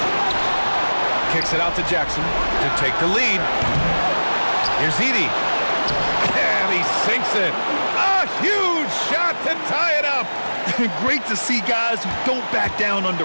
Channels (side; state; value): both; inverted; correlation -1.00